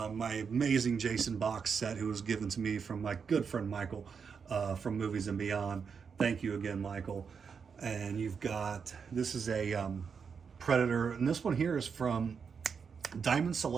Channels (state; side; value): quieter; left; 6.1 dB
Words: amazing Jason box set, who was given to me from my good friend Michael from Movies and Beyond. Thank you again, Michael. And you've got, this is a Predator, and this one here is from Diamond